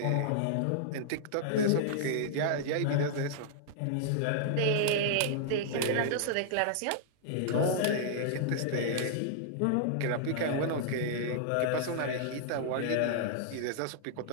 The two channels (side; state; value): both; different; correlation -0.01